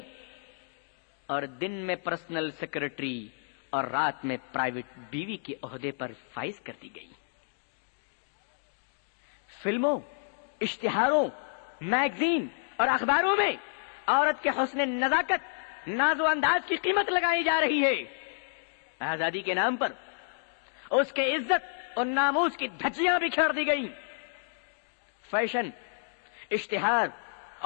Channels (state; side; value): silent; right; digital silence